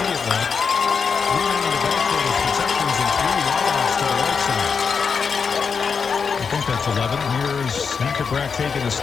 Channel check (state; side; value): quieter; right; 5.8 dB